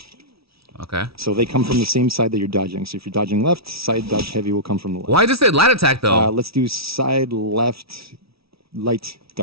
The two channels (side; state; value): left; late; 0.76 ms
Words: Okay. So they come from the same side that you're dodging. So if you're dodging left, side dodge heavy will come from the left. Why does it say light attack though? Let's do side left light